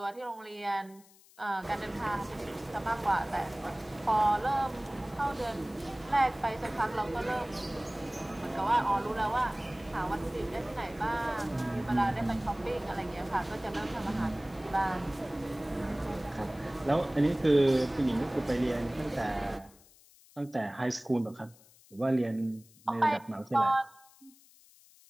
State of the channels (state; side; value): noise; left; hiss, 26 dB below the sound